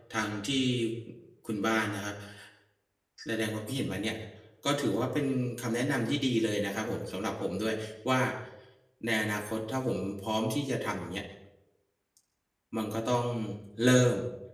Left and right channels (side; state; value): both; identical; correlation 1.00